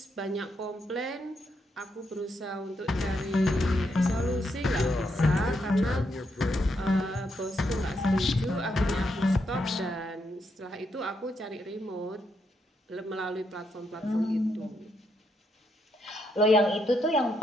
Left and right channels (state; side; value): normal; both; correlation 0.78